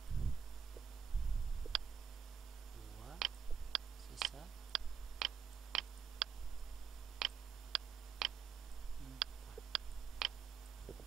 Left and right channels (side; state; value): left; quieter; 7.1 dB